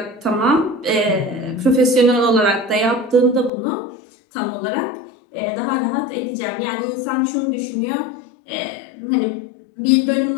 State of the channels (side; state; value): right; drops out; at 3.5 s